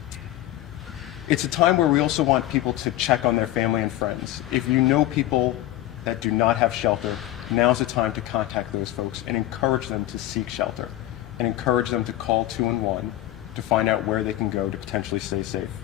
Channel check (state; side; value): quieter; right; 14.8 dB